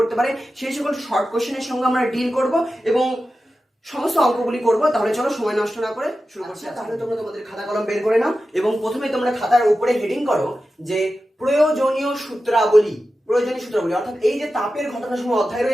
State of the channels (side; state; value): both; normal; correlation 0.93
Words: পারে সেই সকল শর্ট কোশ্চেনের সঙ্গে আমরা ডিল করব এবং সমস্ত অঙ্কগুলি করবো। তাহলে চলো সময় নষ্ট না করে শুরু করছি। তাহলে তোমরা তোমাদের খাতা কলম বের করে নাও এবং প্রথমে তোমরা খাতার উপরে হেডিং করো যে প্রয়োজনীয় সূত্রাবলী। প্রয়োজনীয় সূত্রাবলী অর্থাৎ এই যে তাপের ঘটনা সমূহ অধ্যায়